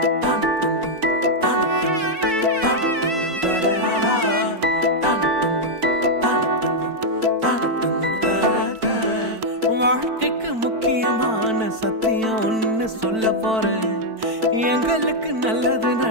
வாழ்க்கைக்கு முக்கியமான சத்தியம் ஒன்னு சொல்ல போறேன். எங்களுக்கு நல்லது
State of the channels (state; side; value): late; left; 4.5 ms